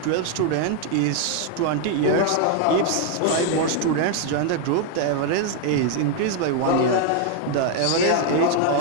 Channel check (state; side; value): different; both; correlation 0.00